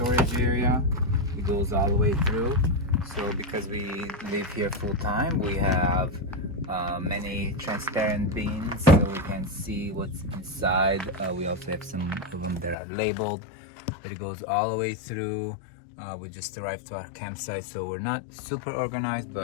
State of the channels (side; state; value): right; drops out; at 12.8 s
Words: area. It goes all the way through. So because we live here full time, we have many transparent bins so we can see what's inside. We also have some of them that are labeled, but it goes all the way through. We just arrived to our campsite, so we're not super organized,